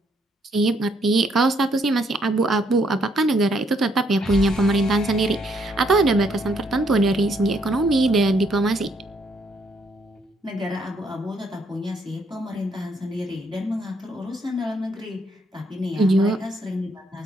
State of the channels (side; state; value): both; normal; correlation 0.71